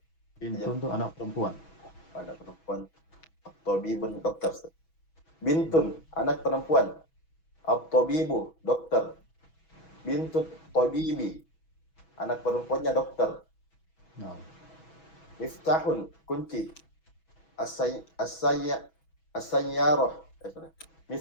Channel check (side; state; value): right; late; 6.2 ms